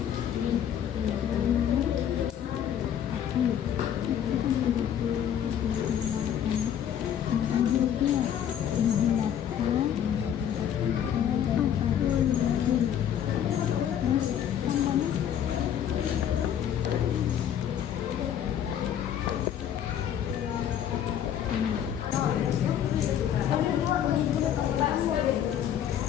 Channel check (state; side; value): quieter; right; 9.7 dB